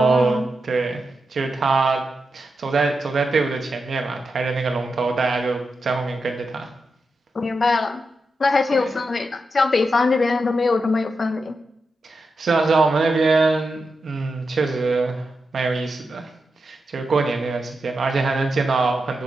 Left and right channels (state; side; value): normal; both; correlation 0.88